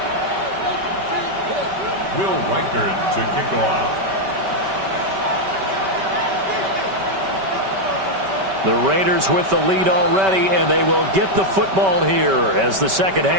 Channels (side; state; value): left; late; 5.2 ms